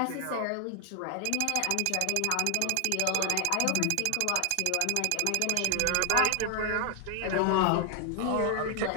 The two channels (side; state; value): both; different; correlation 0.00